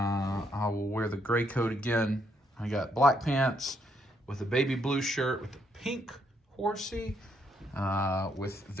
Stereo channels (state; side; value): normal; both; correlation 0.74